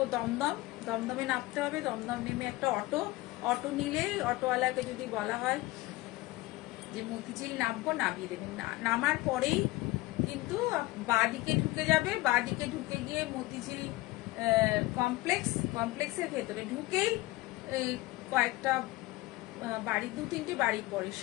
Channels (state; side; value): quieter; right; 19.6 dB